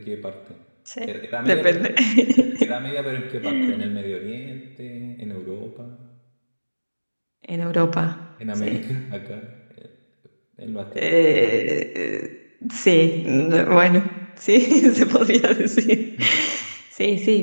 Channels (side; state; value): both; inverted; correlation -1.00